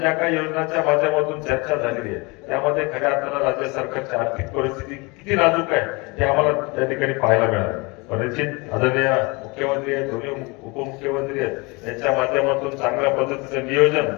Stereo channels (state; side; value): quieter; right; 27.1 dB